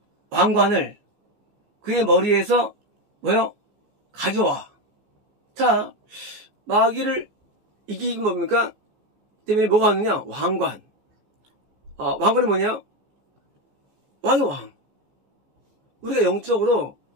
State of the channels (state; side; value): late; left; 14 ms